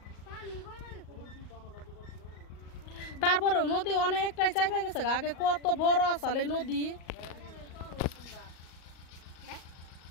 তারপরেও নদী অনেকটাই চাইপা গেছে, আগে কত বড় আসল এই নদী।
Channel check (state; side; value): late; right; 38 ms